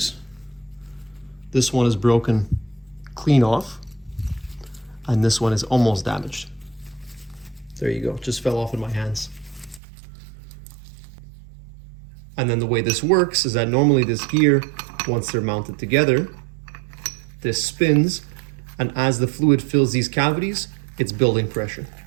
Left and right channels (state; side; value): drops out; left; at 9.8 s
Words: This one is broken clean off, and this one is almost damaged. There you go, just fell off in my hands. And then the way this works is that normally this gear, once they're mounted together, this spins, and as the fluid fills these cavities, it's building pressure.